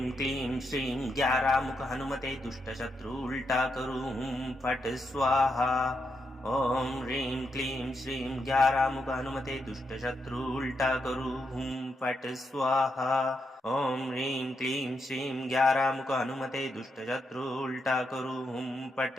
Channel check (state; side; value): normal; both; correlation 0.82